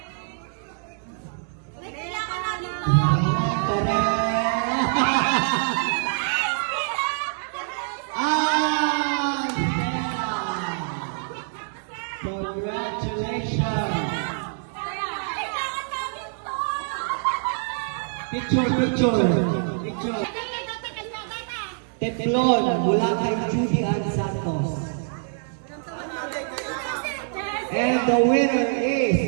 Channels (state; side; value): silent; left; digital silence